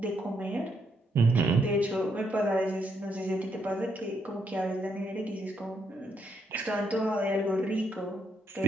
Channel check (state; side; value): normal; both; correlation 0.76